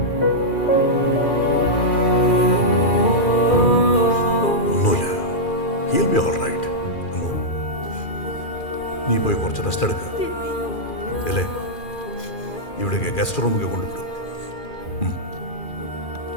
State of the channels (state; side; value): late; right; 2.4 ms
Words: He'll be all right. അമ്മോ, നീ പോയി കുറച്ച് റെസ്റ്റ് എടുക്കുക. അല്ലേ, ഇവിടേക്ക് ഗസ്റ്റ് റൂമിലേക്ക് കൊണ്ടുവിടും.